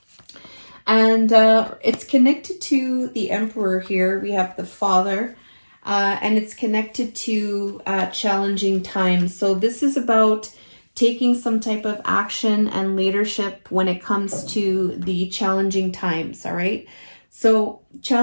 And it's connected to the Emperor here. We have the Father, and it's connected to challenging times. So this is about taking some type of action and leadership when it comes to the challenging times, all right? So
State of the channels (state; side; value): inverted; both; correlation -1.00